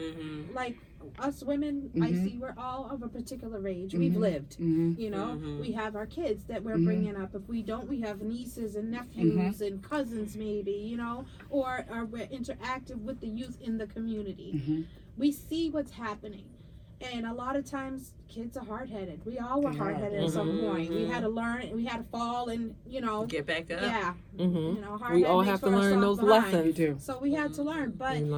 Like us women, I Mhm. see we're all of a particular age. We've Mhm. lived. Mhm. You know, Mhm. we have our kids that we're Mhm. bringing up. If we don't, we have nieces and nephews and cousins, maybe, or we're interactive with the youth in the community. Mhm. We see what's happening. And a lot of times, kids are hard-headed. We all were They are. hard-headed at some Mhm. point. We had to learn, we had to fall, and Get back up. yeah, Mm-hmm. you know, hard We head all makes have to for a learn soft those behind. You lessons. do. So we had to learn, but We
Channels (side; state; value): both; identical; correlation 1.00